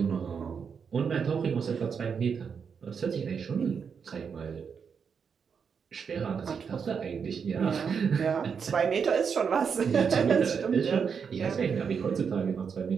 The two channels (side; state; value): left; quieter; 6.4 dB